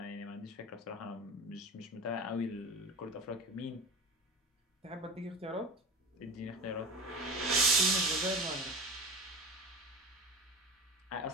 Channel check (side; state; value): both; normal; correlation 0.31